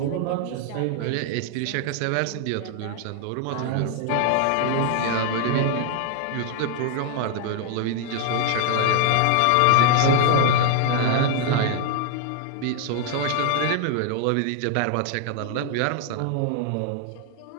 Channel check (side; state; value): both; different; correlation 0.00